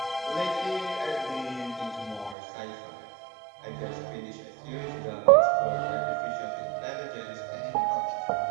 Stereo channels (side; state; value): left; drops out; at 2.4 s